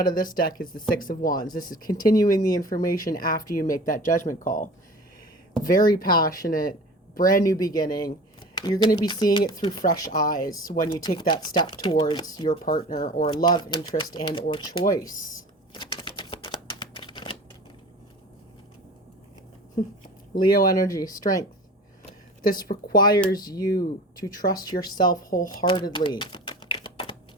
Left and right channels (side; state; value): both; normal; correlation 0.39